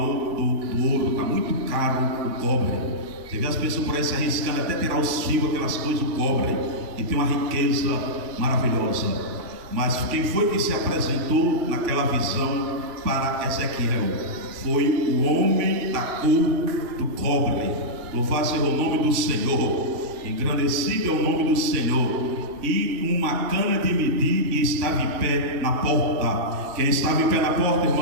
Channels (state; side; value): late; left; 2.9 ms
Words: do ouro, está muito caro o cobre. Você vê as pessoas por aí se arriscando até tirar os fios, aquelas coisas do cobre, e tem uma riqueza maravilhosa. Mas quem foi que se apresentou naquela visão para Ezequiel? Foi o homem da cor do cobre. Louvado seja o nome do Senhor, engrandecido é o nome do Senhor. E uma cana de medir, e estava em pé na porta. Quem estava em pé na porta,